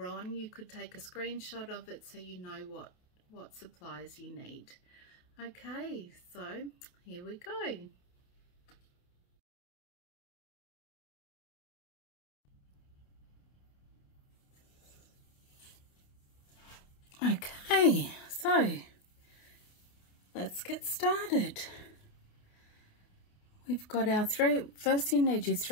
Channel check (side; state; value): right; late; 28 ms